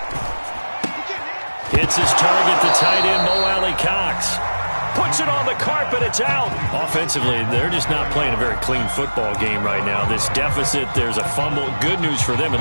Hits his target, the tight end, Mo Alley Cox. Puts it on the carpet, it's out. Offensively, they're just not playing a very clean football game right now. This deficit, there's a fumble. Good news for them,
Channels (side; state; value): both; inverted; correlation -1.00